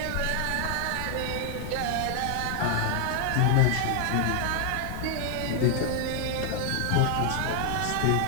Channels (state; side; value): different; both; correlation 0.00